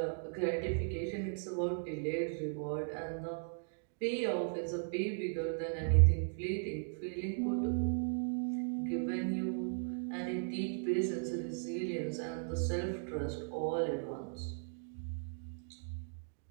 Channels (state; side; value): silent; left; digital silence